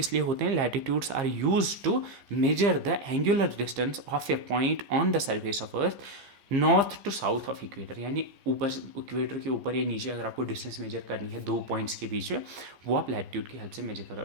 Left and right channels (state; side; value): late; left; 15 ms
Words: लिए होते हैं, latitudes are use to measure the angular distance of a point on the surface of earth north to south of equator, यानी ऊपर इक्वेटर के ऊपर या नीचे अगर आपको डिस्टेंस मेजर करनी है दो पॉइंट्स के बीच में, वो आप लैटिट्यूड की हेल्प से मेजर करो।